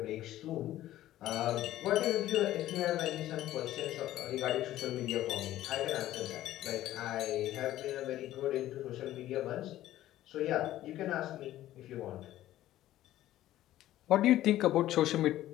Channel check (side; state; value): right; quieter; 14.0 dB